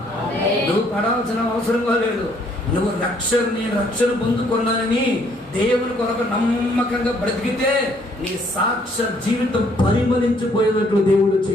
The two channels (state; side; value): normal; both; correlation 0.65